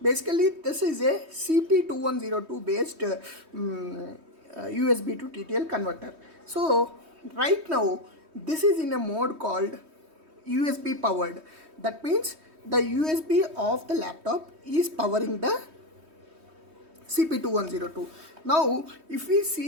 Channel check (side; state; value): left; late; 3.2 ms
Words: basically this is a CP2102 based USB to TTL converter. So right now this is in a mode called USB powered. That means the USB of the laptop is powering the CP2102. Now if we